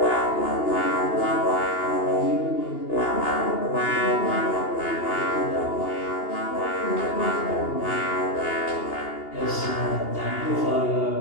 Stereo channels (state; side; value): late; right; 2.8 ms